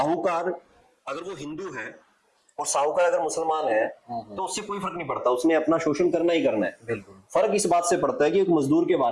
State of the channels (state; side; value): identical; both; correlation 1.00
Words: अगर वो हिंदू है और साहूकार अगर मुसलमान है तो उससे कोई फर्क नहीं पड़ता, उसने अपना शोषण करना ही करना है। बिल्कुल। फर्क इस बात से पड़ता है कि एक मजदूर के